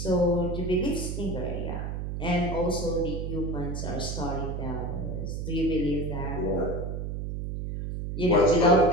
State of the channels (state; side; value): noise; right; hum, 4 dB below the sound